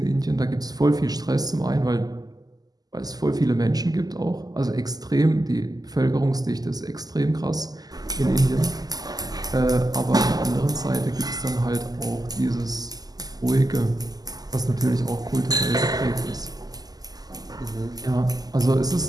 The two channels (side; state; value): left; late; 0.18 ms